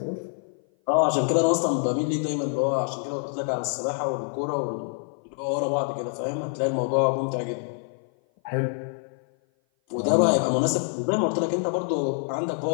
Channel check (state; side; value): silent; right; 56 dB below the other